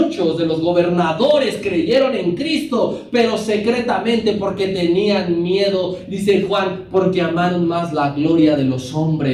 de los gobernadores creyeron en Cristo, pero secretamente porque tenían miedo, dice Juan, porque amaron más la gloria de los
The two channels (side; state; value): both; identical; correlation 1.00